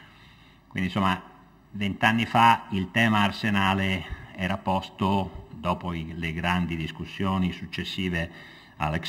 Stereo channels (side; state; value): both; identical; correlation 1.00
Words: Quindi insomma 20 anni fa il tema arsenale era posto dopo le grandi discussioni successive